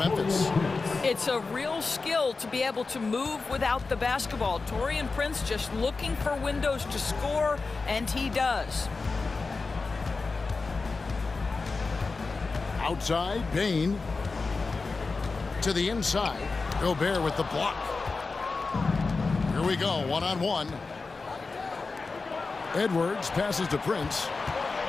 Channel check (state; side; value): quieter; right; 4.1 dB